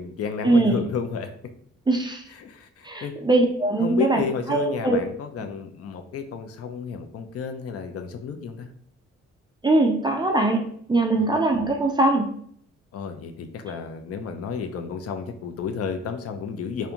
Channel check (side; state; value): both; normal; correlation 0.53